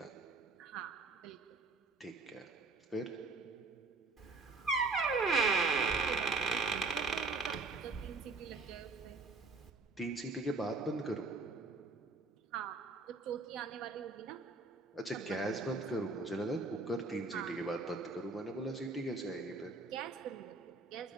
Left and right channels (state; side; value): quieter; left; 3.5 dB